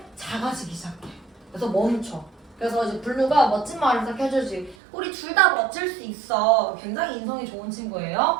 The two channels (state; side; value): drops out; left; at 4.8 s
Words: 작아지기 시작해. 그래서 멈춰. 그래서 이제 블루가 멋진 말을 딱 해주지. 우리 둘 다 멋질 수 있어. 굉장히 인성이 좋은